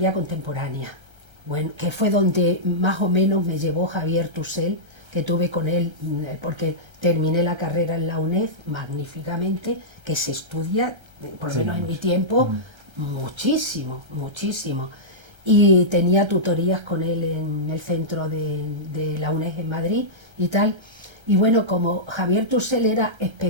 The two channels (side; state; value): left; late; 1.3 ms